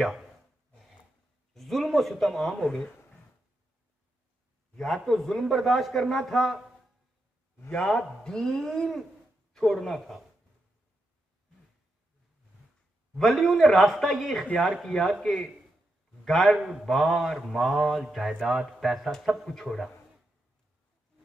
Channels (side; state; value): both; normal; correlation 0.85